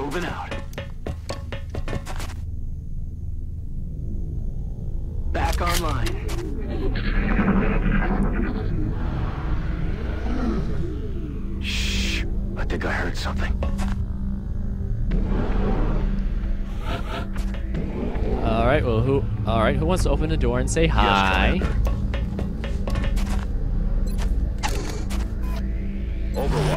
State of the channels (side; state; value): both; identical; correlation 1.00